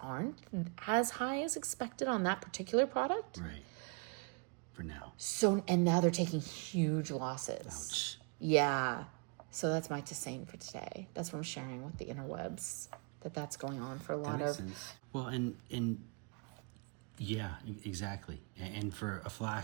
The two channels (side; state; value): left; quieter; 34.7 dB